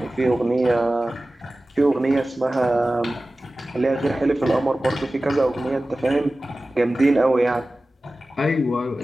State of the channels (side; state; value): both; normal; correlation 0.96